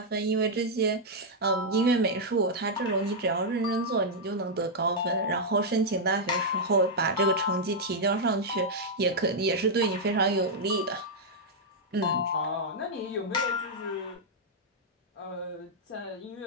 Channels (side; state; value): both; normal; correlation -0.05